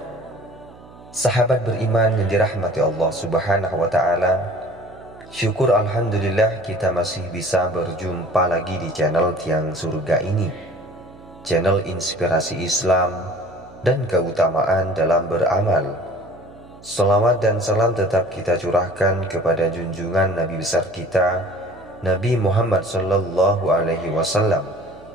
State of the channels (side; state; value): right; noise; hum, 21 dB below the sound